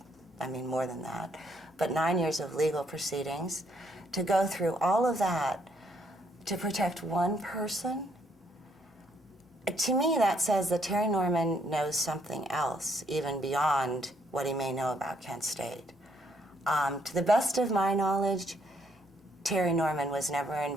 I mean more than that, but 9 years of legal proceedings, to go through all of that to protect one person. To me, that says that Terry Norman knows something else, even beyond what he may know about Kent State. To the best of my knowledge, Terry Norman was never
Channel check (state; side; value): normal; both; correlation 0.70